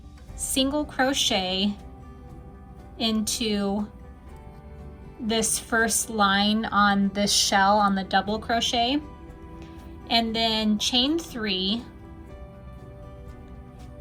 single crochet into this first line on this shell on the double crochet, and then chain 3,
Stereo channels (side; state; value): both; identical; correlation 1.00